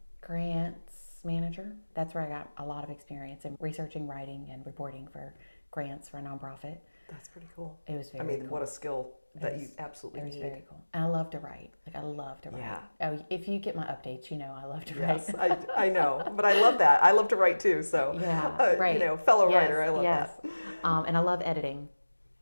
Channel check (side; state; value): both; inverted; correlation -1.00